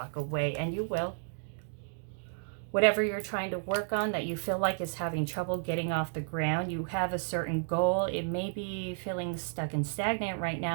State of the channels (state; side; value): silent; left; digital silence